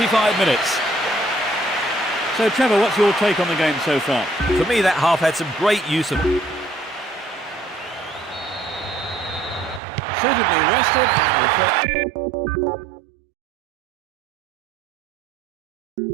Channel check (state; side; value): drops out; left; at 9.8 s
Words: minutes. So, Trevor, what's your take on the game so far? For me, that half had some great use of... Suitably rested and refreshed.